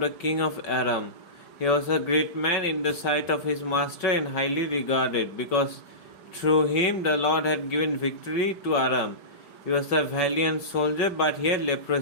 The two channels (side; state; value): right; late; 5.3 ms